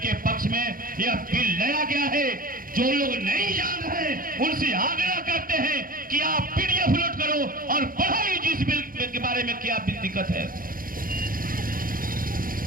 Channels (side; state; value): left; late; 0.41 ms